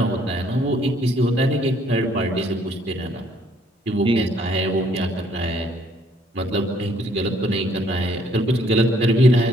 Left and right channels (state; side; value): normal; both; correlation 0.65